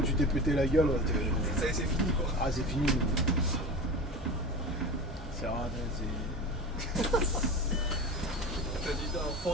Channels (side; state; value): both; normal; correlation 0.29